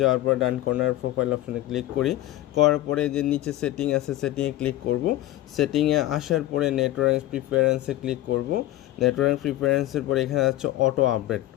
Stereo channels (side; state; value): right; quieter; 15.1 dB